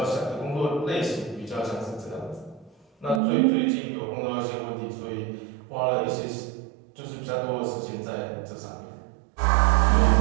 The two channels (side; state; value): left; drops out; at 3.2 s